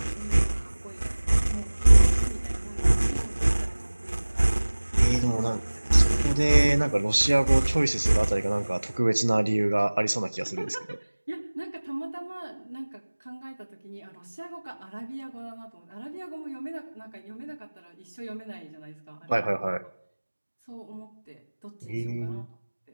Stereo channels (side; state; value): both; inverted; correlation -1.00